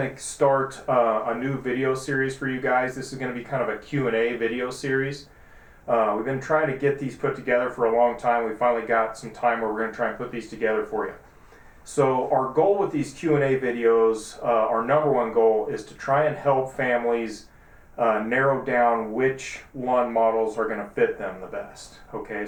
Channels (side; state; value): both; identical; correlation 1.00